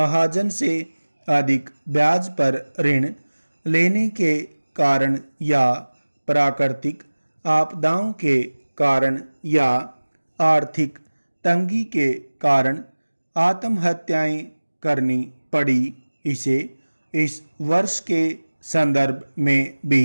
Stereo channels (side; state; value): both; inverted; correlation -1.00